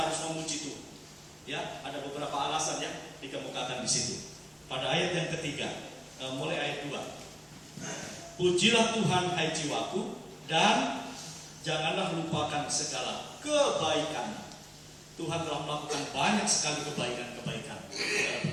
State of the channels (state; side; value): identical; both; correlation 1.00